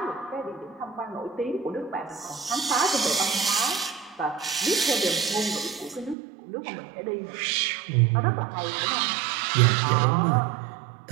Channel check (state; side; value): drops out; left; at 6.2 s